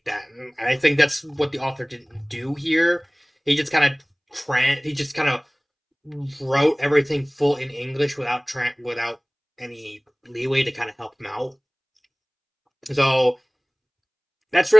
that. And I think that's what the author didn't do here. He just kind of he just kind of wrote everything full in English without any leeway to kind of help him out. So that's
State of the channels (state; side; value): identical; both; correlation 1.00